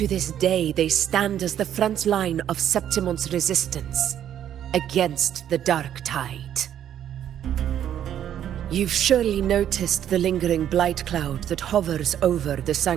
this day, they stand as the front line of Septimon's resistance against the Dark Tide. You've surely noticed the lingering blight cloud that hovers over the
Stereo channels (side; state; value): left; quieter; 10.4 dB